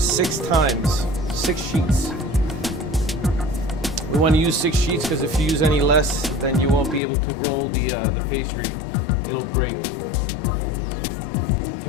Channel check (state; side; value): drops out; right; at 7.0 s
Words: times, 6 sheets. We want to use 6 sheets because if you use any less, then you won't be able to roll the pastry. It'll break.